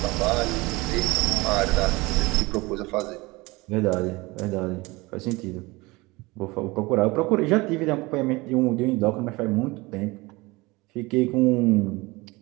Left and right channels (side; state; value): left; quieter; 23.0 dB